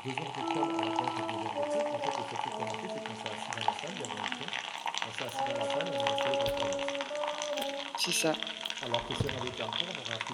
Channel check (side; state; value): both; identical; correlation 1.00